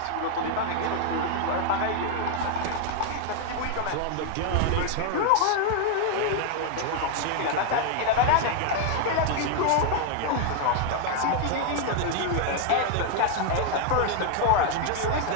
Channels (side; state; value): both; different; correlation 0.00